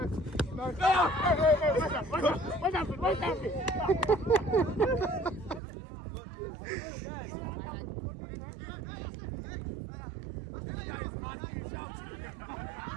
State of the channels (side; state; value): left; drops out; at 5.6 s